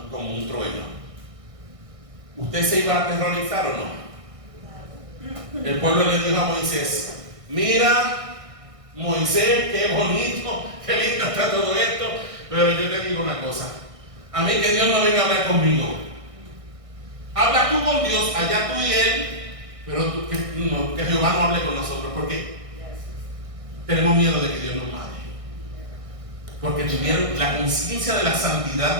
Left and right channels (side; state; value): left; late; 1.6 ms